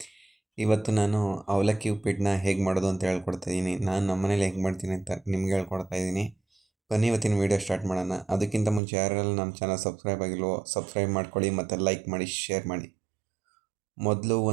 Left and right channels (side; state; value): left; drops out; at 8.8 s